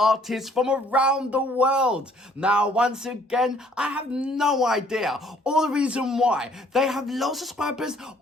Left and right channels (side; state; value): both; normal; correlation 0.61